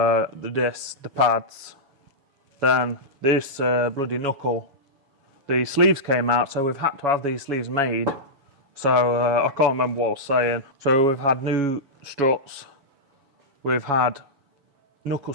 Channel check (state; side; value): late; left; 7.2 ms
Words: discs, the pads. Then this bloody knuckle, the sleeves came out, so we've had to have these sleeves made. So I can't remember what I was saying. So we've had new struts, we've had knuckle